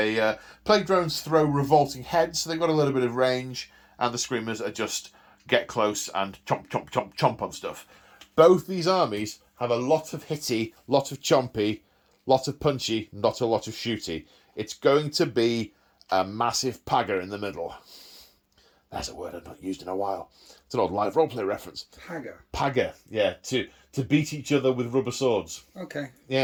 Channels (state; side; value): identical; both; correlation 1.00